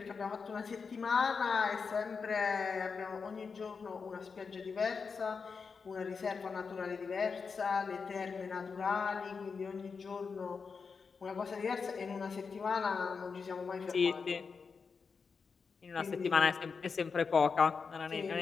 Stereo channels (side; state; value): right; quieter; 5.3 dB